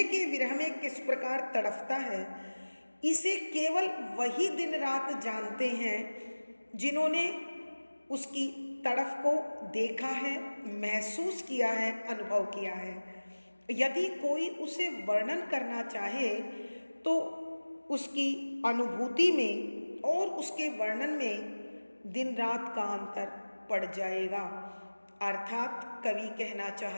के विरह में किस प्रकार तड़फता है, इसे केवल वही दिन रात जानते हैं जिन्होंने उसकी तड़फ को देखा है, महसूस किया है, अनुभव किया है। यदि कोई उसे वर्णन करना चाहे तो उसकी अनुभूति में और उसके वर्णन में दिन रात का अंतर पड़ जाएगा। अर्थात कवि कहना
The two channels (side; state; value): both; inverted; correlation -1.00